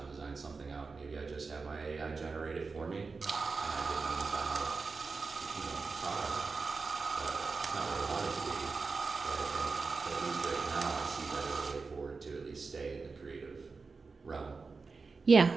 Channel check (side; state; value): left; quieter; 4.4 dB